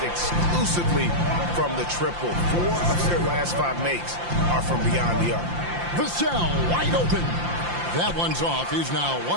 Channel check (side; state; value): left; late; 5.8 ms